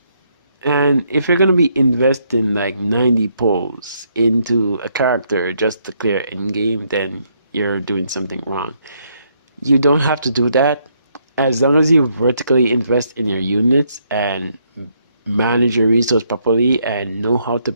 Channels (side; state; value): both; inverted; correlation -0.73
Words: And if you're gonna be investing like 90 pulls into a character just to clear end game, then you're doing something wrong. You don't have to do that. As long as you vertically invest in your units and manage your resource properly and know how to